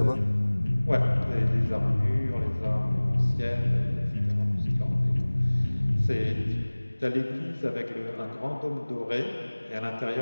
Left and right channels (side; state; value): both; inverted; correlation -1.00